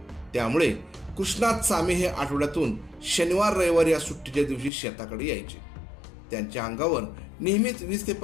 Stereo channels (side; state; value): right; drops out; at 4.7 s